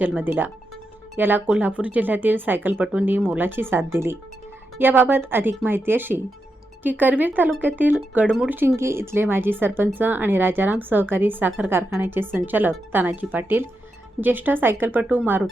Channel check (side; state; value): both; normal; correlation 0.86